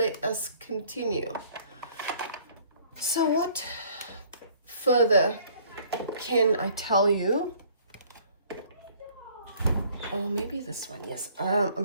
us continue. So what further can I tell you? Oh, maybe this one, yes. I'm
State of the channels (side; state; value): both; inverted; correlation -0.57